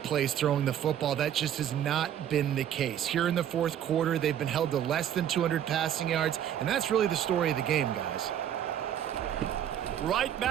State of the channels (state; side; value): quieter; left; 10.2 dB